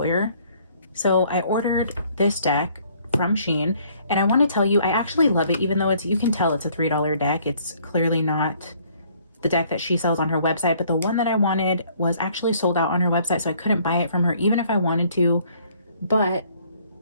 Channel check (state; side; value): inverted; both; correlation -0.61